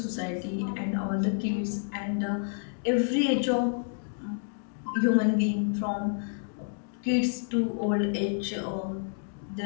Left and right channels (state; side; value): silent; right; digital silence